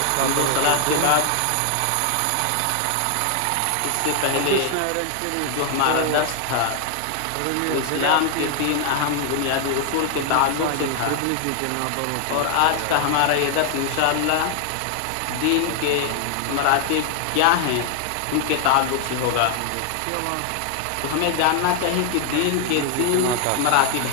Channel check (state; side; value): different; both; correlation 0.00